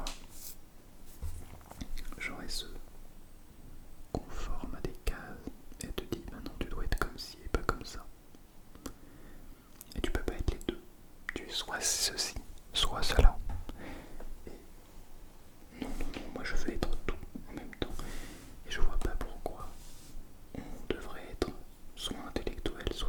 genre elle se conforme à des cases et elle te dit bah non, tu dois être comme ci et pas comme ça. Et tu peux pas être les deux. Tu es soit ceci, soit cela. Et non, moi je veux être tout en même temps. Et je vois pas pourquoi on devrait être soit intellectuel,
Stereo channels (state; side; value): identical; both; correlation 1.00